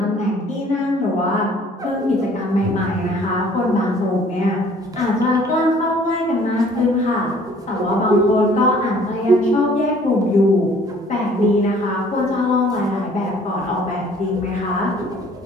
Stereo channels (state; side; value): normal; both; correlation 0.55